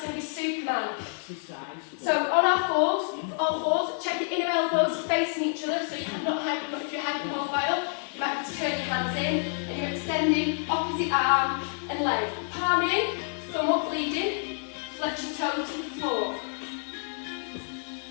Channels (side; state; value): right; silent; 59 dB below the other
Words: going to be Superman. Exercise 4. So on our fours, all fours, check your inner elbows facing each other so you're not hyper, if you're hypermobile, you might have to turn your hands in and you're extending opposite arm and leg. Palm in, thumb up leading, flex your toe to the floor.